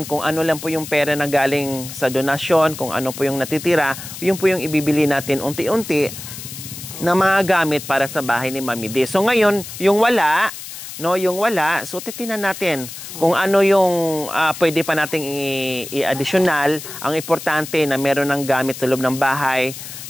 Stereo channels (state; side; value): noise; left; hiss, 11 dB below the sound